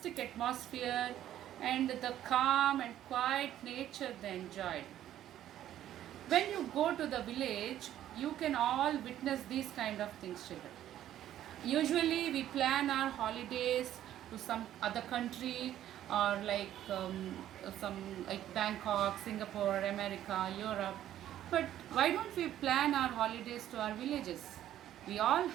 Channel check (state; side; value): quieter; left; 12.0 dB